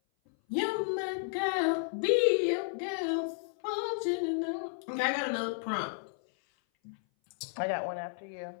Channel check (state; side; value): silent; right; 56 dB below the other